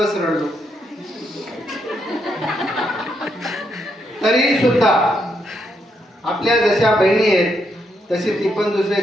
रडलो. तरी सुद्धा आपल्या जशा बहिणी आहेत तशी ती पण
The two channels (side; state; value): both; normal; correlation 0.78